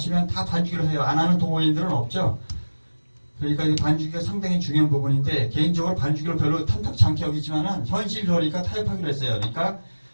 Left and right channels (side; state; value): both; inverted; correlation -1.00